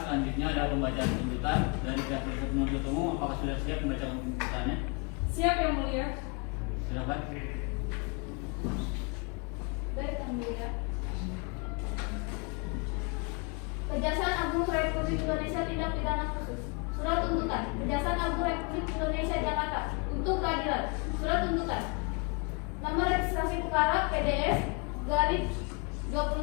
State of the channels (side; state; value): right; quieter; 32.1 dB